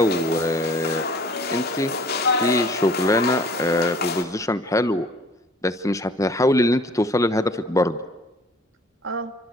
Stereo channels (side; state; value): both; normal; correlation 0.52